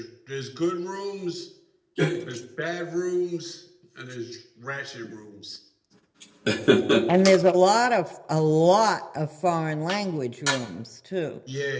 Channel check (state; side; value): identical; both; correlation 1.00